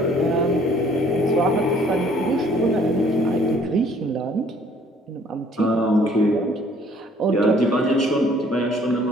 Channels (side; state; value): both; normal; correlation 0.58